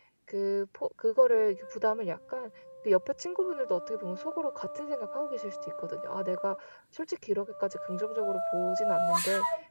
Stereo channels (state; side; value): inverted; both; correlation -1.00